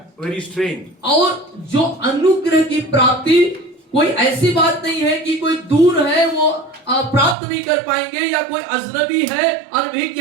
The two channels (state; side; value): drops out; left; at 7.4 s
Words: very strange. और जो अनुग्रह की प्राप्ति कोई ऐसी बात नहीं है कि कोई दूर है वो प्राप्त नहीं कर पाएंगे, या कोई अजनबी है